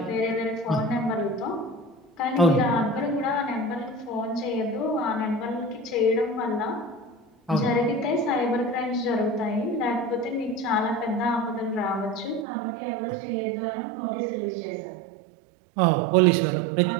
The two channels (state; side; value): drops out; left; at 12.5 s